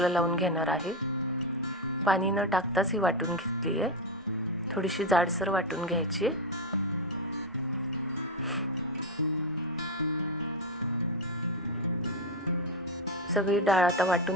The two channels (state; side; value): normal; both; correlation 0.09